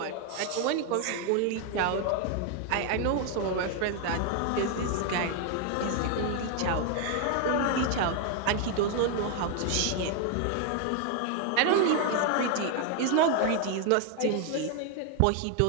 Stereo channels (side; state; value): both; different; correlation 0.01